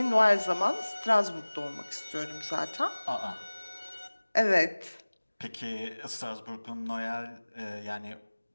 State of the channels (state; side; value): inverted; both; correlation -1.00